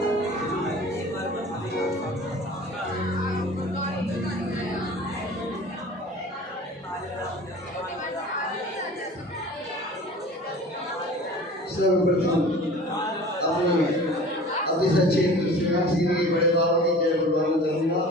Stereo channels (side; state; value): both; normal; correlation 0.42